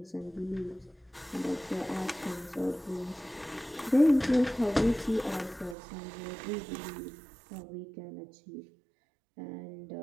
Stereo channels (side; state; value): left; drops out; at 5.8 s